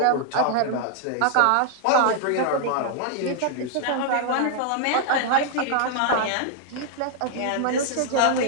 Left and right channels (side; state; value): both; different; correlation 0.00